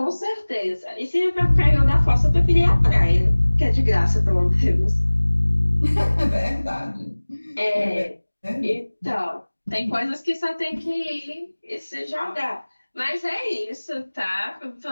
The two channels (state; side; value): inverted; both; correlation -1.00